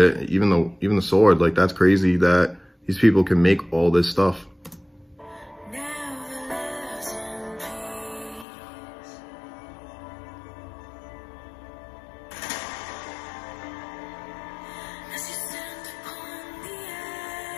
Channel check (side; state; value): right; drops out; at 8.5 s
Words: even the sword. Like, that's crazy that these people can make all this stuff.